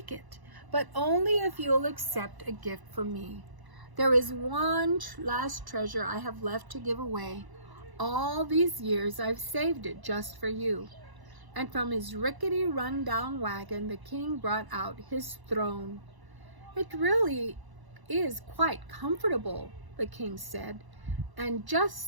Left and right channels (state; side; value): late; left; 1.0 ms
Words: it, but only if you'll accept a gift from me. There is one last treasure I have left to give away. All these years I've saved it just for you." And from his rickety run-down wagon, the king brought out his throne. "It really is quite comfortable," the king said. and